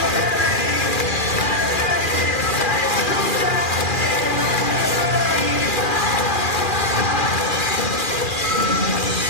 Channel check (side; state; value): right; late; 2.4 ms